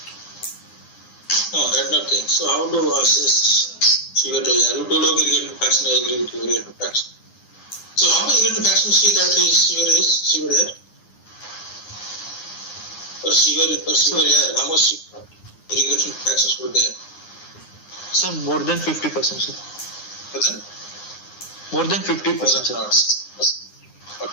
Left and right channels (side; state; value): right; late; 9.7 ms